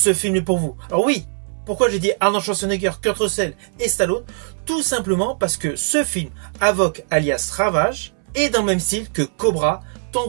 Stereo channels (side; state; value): left; silent; 63 dB below the other